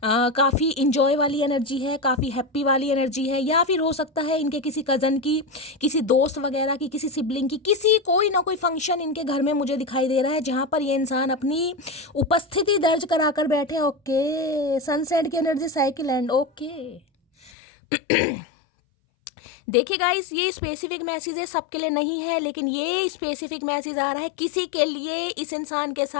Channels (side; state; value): right; drops out; at 17.5 s